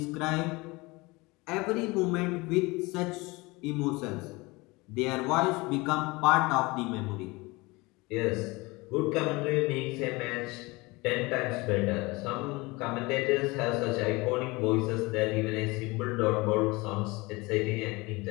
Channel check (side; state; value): right; quieter; 23.7 dB